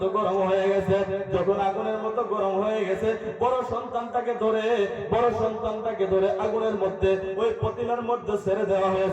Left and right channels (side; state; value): both; identical; correlation 1.00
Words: গরম হয়ে গেছে। যখন আগুনের মতো গরম হয়ে গেছে, বড় সন্তানটাকে ধরে আগুনের মধ্যে, ওই পতিলার মধ্যে ছেড়ে দেওয়া